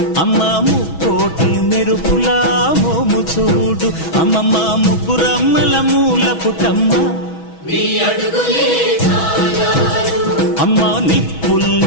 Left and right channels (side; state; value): right; late; 6.2 ms